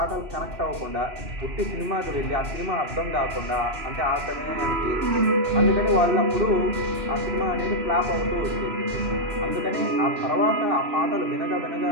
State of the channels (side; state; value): left; late; 2.6 ms